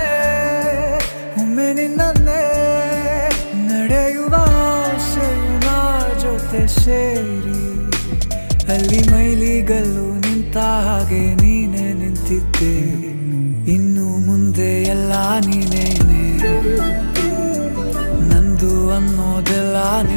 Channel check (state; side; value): inverted; both; correlation -1.00